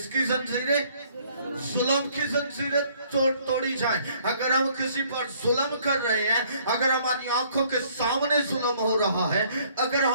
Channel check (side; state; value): both; inverted; correlation -0.61